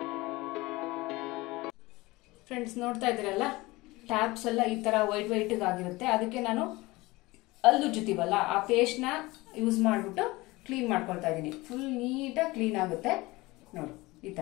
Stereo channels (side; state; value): right; quieter; 21.3 dB